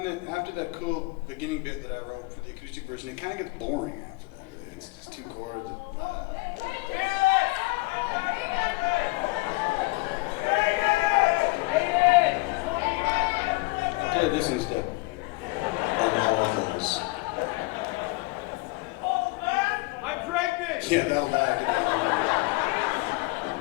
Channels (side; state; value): right; quieter; 24.2 dB